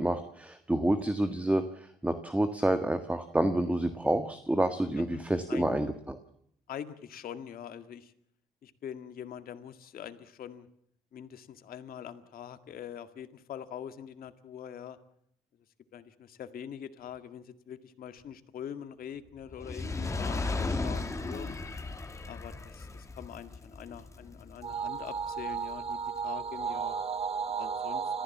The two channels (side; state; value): both; normal; correlation 0.81